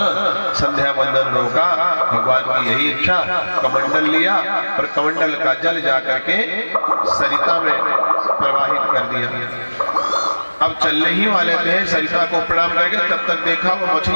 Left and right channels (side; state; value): both; inverted; correlation -1.00